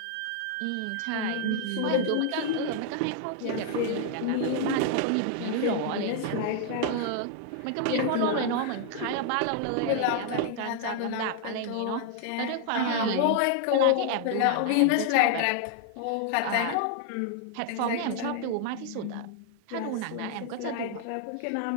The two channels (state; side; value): different; both; correlation 0.00